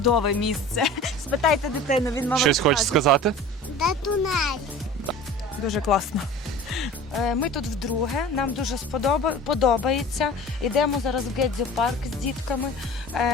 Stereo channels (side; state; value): both; normal; correlation 0.40